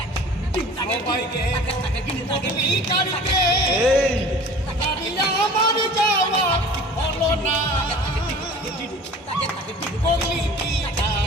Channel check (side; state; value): both; normal; correlation 0.43